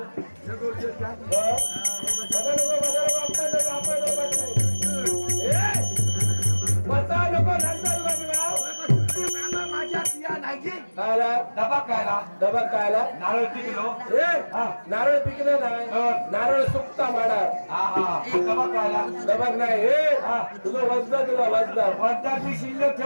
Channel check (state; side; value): inverted; both; correlation -1.00